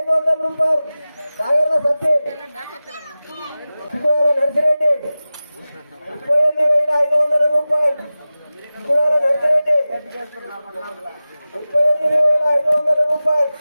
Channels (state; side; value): inverted; both; correlation -0.96